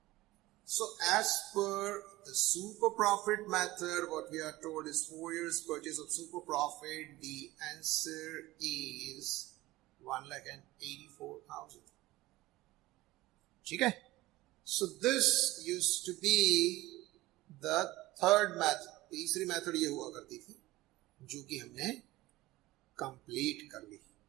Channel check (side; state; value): left; quieter; 18.3 dB